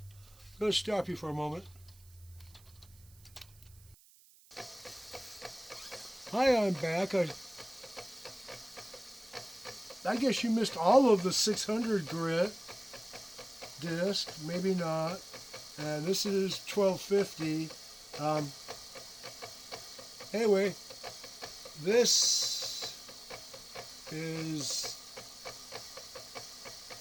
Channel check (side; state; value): right; noise; hiss, 26 dB below the sound